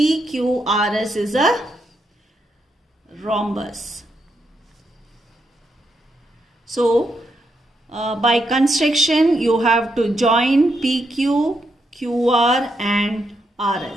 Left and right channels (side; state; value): both; normal; correlation 0.81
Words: is a rhombus. So, by construction you have to join PQ, QR and